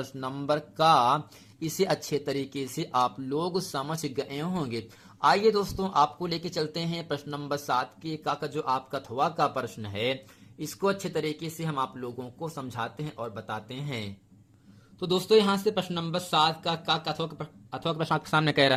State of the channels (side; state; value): both; identical; correlation 1.00